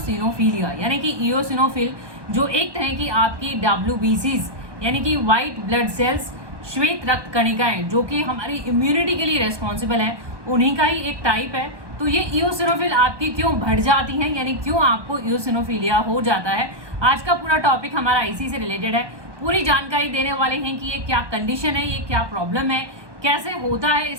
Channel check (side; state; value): left; late; 1.2 ms